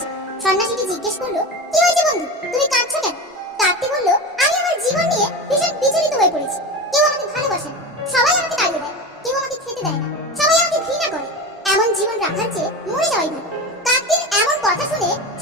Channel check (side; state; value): both; normal; correlation 0.26